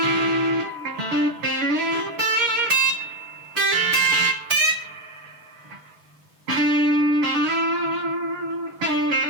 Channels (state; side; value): late; left; 6.5 ms